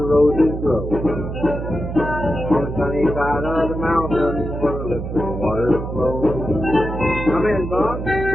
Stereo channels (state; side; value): noise; right; hum, 6 dB below the sound